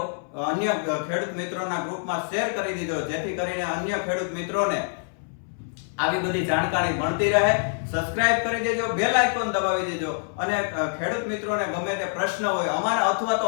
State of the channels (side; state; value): right; silent; 60 dB below the other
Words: અન્ય ખેડૂત મિત્રોના ગ્રુપમાં શેર કરી દીધો, જેથી કરીને અન્ય ખેડૂત મિત્રોને આવી બધી જાણકારી મળતી રહે. સબસ્ક્રાઇબ કરી દેજો, બેલ આઇકોન દબાવી દેજો, અને ખેડૂત મિત્રોને ગમે તે પ્રશ્ન હોય અમારા અથવા તો